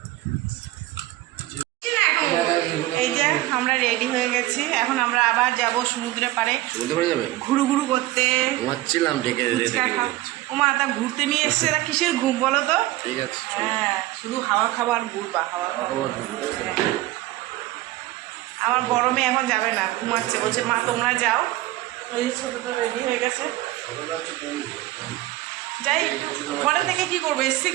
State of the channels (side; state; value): left; quieter; 16.9 dB